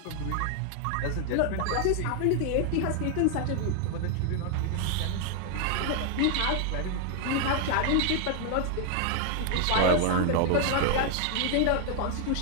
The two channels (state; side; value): different; both; correlation 0.00